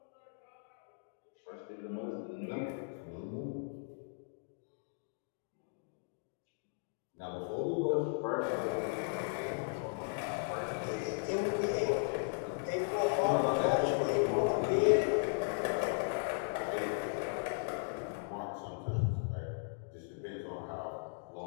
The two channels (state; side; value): silent; right; digital silence